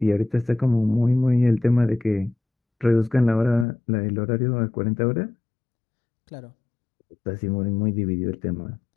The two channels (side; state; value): right; drops out; at 3.7 s